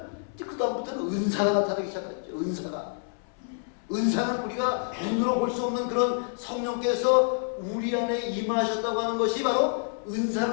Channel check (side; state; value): right; silent; 59 dB below the other